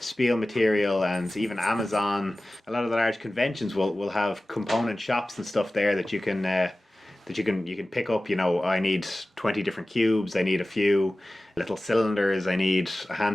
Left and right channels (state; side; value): normal; both; correlation 0.96